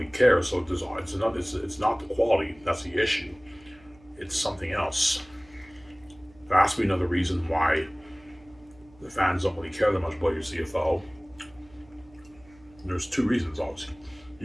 care. So it's not the quality that's the issue. It's something else. There has to be another reason why the fans don't really care that much about your CFL. There's two reasons, obviously.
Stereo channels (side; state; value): right; noise; hum, 27 dB below the sound